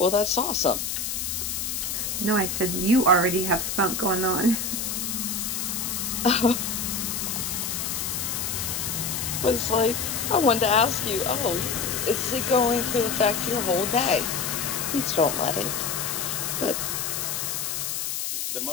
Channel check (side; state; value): left; noise; hiss, 2 dB below the sound